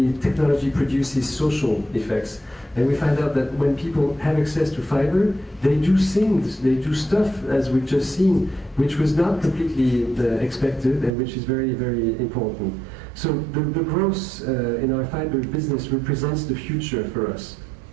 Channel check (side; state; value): left; drops out; at 11.1 s